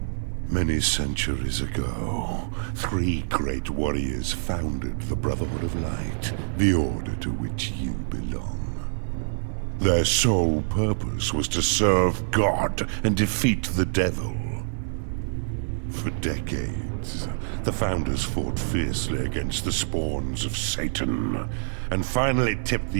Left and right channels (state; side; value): silent; left; digital silence